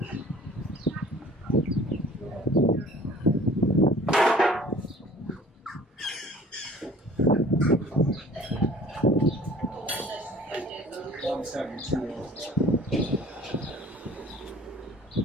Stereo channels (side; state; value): both; normal; correlation 0.49